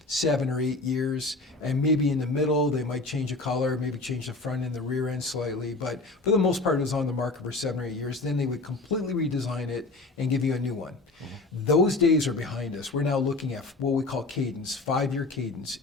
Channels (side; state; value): right; quieter; 3.2 dB